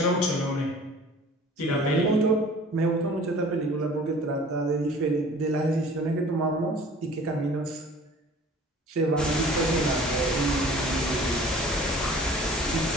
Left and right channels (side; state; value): both; normal; correlation 0.47